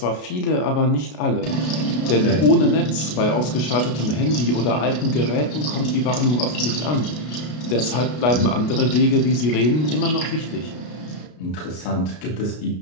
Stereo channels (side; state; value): right; late; 33 ms